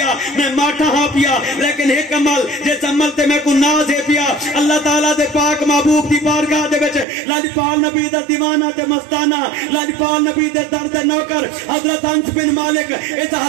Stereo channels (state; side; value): drops out; left; at 7.1 s